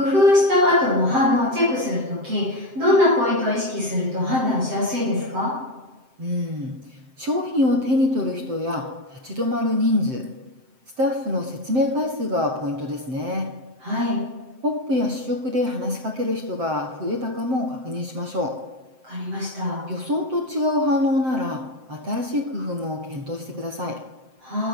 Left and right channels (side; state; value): left; late; 7.7 ms